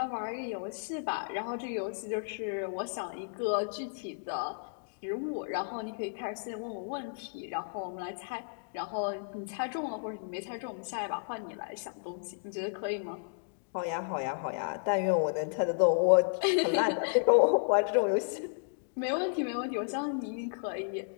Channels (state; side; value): silent; right; digital silence